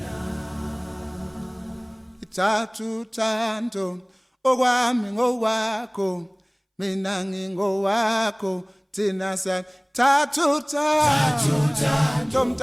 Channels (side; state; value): both; identical; correlation 1.00